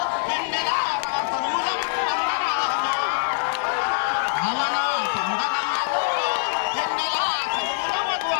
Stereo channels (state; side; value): silent; right; 63 dB below the other